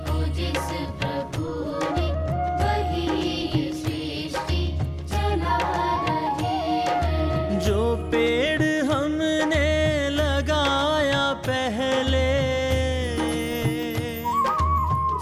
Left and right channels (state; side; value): identical; both; correlation 1.00